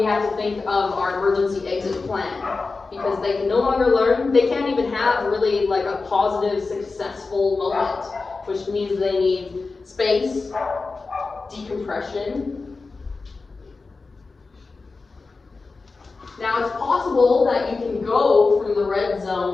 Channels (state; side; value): quieter; right; 4.0 dB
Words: have to think of our emergency exit plan. Because they can no longer learn, they can't even have really like a positive, successful moment, which means they need space, decompression. Now it's possible that you can go from the red